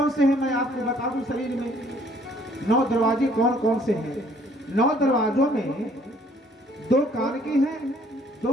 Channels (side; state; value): both; normal; correlation 0.61